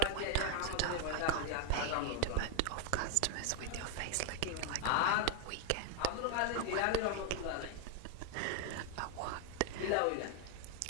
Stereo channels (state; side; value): different; both; correlation 0.01